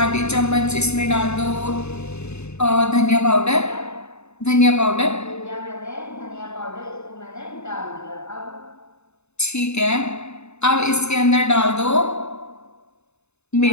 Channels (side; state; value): right; late; 0.81 ms